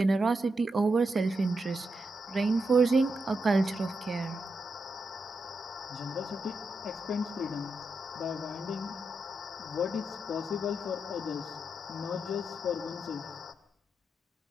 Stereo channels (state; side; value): normal; both; correlation 0.85